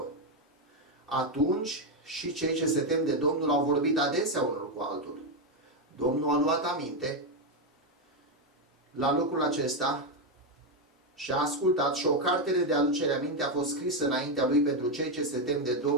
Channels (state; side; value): normal; both; correlation 0.06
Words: Atunci și cei ce se tem de Domnul au vorbit adesea unul cu altul. Domnul a luat aminte la lucrul acesta și a ascultat și o cartere de aducere aminte a fost scrisă înaintea lui pentru cei ce se tem de